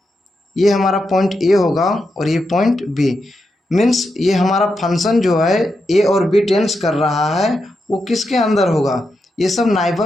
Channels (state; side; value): normal; both; correlation 0.86